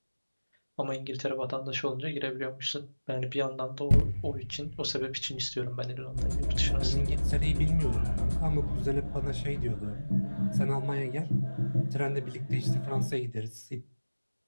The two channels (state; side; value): inverted; both; correlation -1.00